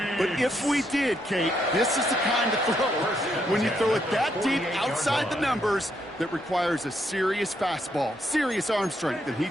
But if we did, Kate, this is the kind of throw when you throw it that deep outside the numbers that requires a serious fastball, serious arm strength, and he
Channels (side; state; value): both; normal; correlation 0.76